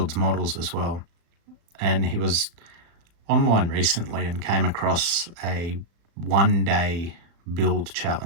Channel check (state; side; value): late; left; 35 ms